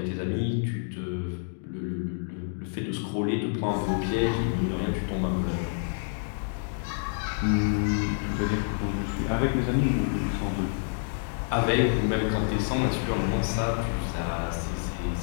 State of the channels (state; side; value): silent; right; digital silence